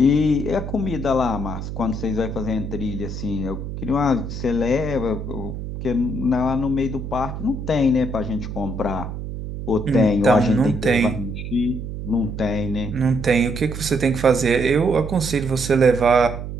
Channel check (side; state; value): right; noise; hum, 7 dB below the sound